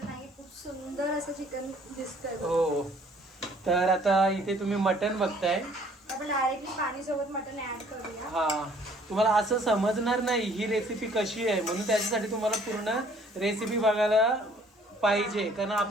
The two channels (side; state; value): both; normal; correlation 0.58